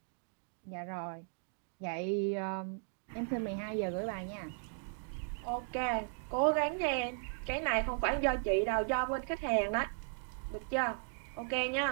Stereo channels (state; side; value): silent; left; 53 dB below the other